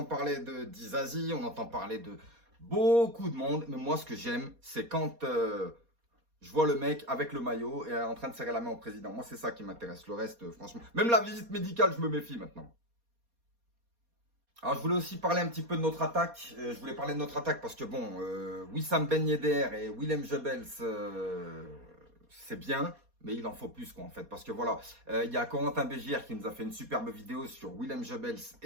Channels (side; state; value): left; late; 4.2 ms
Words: parler de Dizazi, on entend parler de beaucoup de monde. Mais moi, ce que j'aime, c'est quand je vois le mec avec le maillot et en train de serrer la main au président. Moi, c'est ça qui m'intéresse. Le reste, franchement, même la visite médicale, je me méfie maintenant. Alors, je voulais aussi parler un petit peu de notre attaque. Je voulais parler de notre attaque parce que, bon, Wissam Ben Yedder et Willem Jebels, c'est bien, mais il en faut plus, quoi, en fait. Parce que, voilà, il y a Corentin Bégière qui nous a fait une superbe vidéo sur Willem Jebels